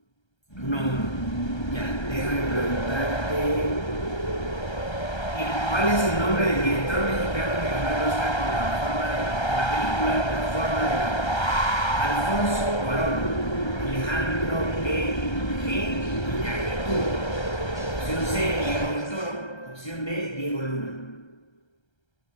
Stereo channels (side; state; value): right; late; 1.3 ms